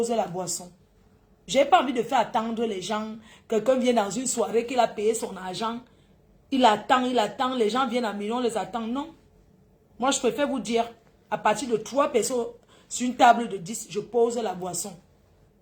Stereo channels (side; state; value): both; identical; correlation 1.00